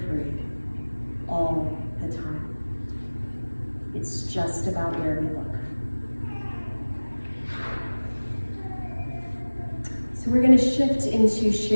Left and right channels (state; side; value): inverted; both; correlation -1.00